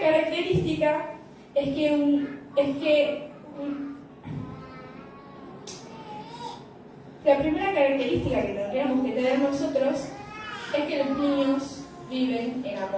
es que la primera característica que tendríamos que tener nosotros es que los niños viven en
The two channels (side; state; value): both; identical; correlation 1.00